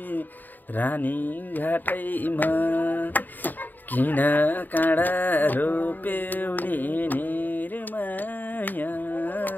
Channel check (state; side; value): late; right; 0.088 ms